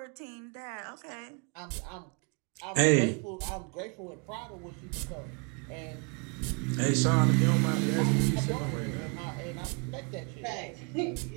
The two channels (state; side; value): quieter; left; 34.4 dB